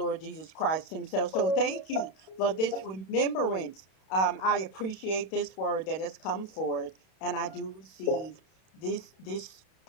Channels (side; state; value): right; late; 32 ms